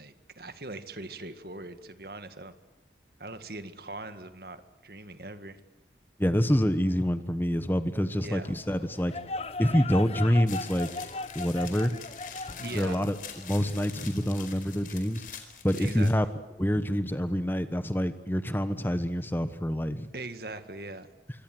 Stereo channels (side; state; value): both; normal; correlation 0.90